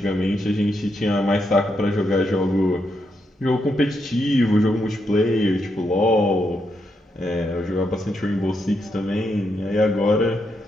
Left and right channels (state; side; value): normal; both; correlation 0.81